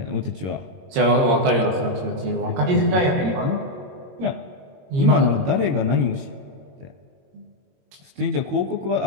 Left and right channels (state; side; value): late; left; 22 ms